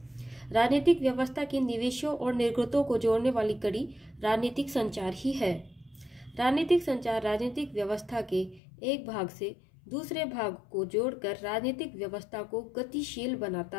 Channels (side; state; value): right; drops out; at 8.6 s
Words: राजनीतिक व्यवस्था के निवेशों और निर्गतों को जोड़ने वाली कड़ी राजनीतिक संचार ही है। राजनीतिक संचार राजनीतिक व्यवस्था के एक भाग से दूसरे भाग को जोड़कर राजनीतिक व्यवस्था को गतिशील बनाता